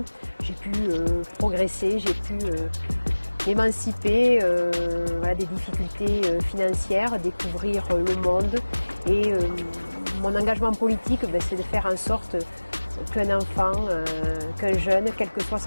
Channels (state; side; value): inverted; both; correlation -1.00